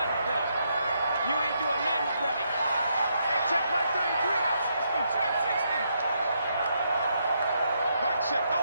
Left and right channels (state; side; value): inverted; both; correlation -0.78